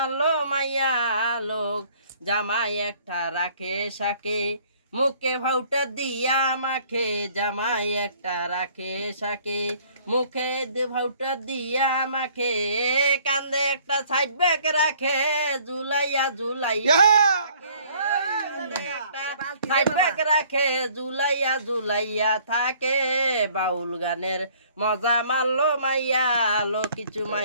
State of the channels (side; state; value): both; inverted; correlation -0.57